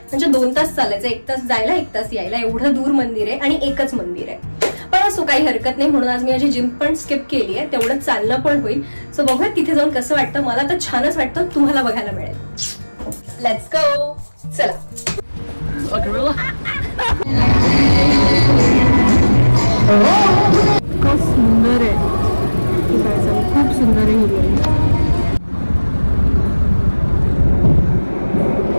म्हणजे 2 तास चालायचं. 1 तास जायला 1 तास यायला. एवढं दूर मंदिर आहे आणि एकच मंदिर आहे. पण असो काही हरकत नाही. म्हणून आज मी माझी जिम पण स्किप केली आहे. तेवढं चालणं पण होईल. सो बघूया तिथे जाऊन कसं वाटतं. मला तर छानच वाटतं, तुम्हाला बघायला मिळेल. Let's go. चला. खूप सुंदर आहे, खूप सुंदर आहे.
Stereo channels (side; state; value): both; inverted; correlation -1.00